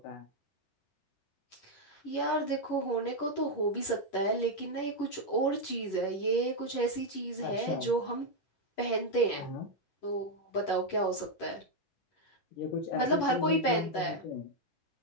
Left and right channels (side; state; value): right; late; 11 ms